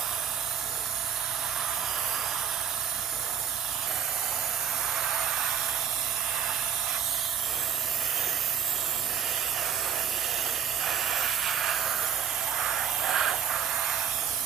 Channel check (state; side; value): quieter; left; 8.2 dB